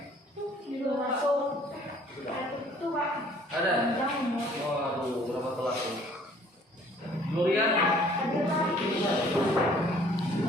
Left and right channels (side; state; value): both; normal; correlation 0.56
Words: Ada. Waduh, berapa telat tuh? Gloria.